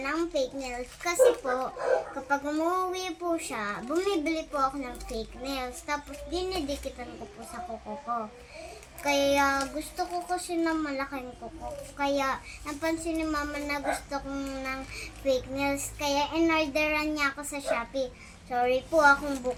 fake nails. Kasi po, kapag umuwi po siya, bumibili po ako ng fake nails. Tapos dinidikitan ko po sa kuko ko. Kaya gusto ko kasi ng malaking kuko. Kaya napansin ni mama na gusto ko ng fake nails. Kaya in-orderan niya ako sa Shopee. Sorry po akong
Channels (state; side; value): identical; both; correlation 1.00